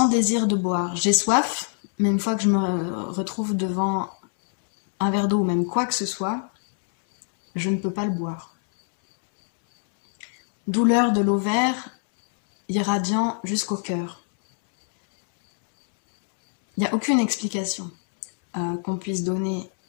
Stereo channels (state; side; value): silent; right; 61 dB below the other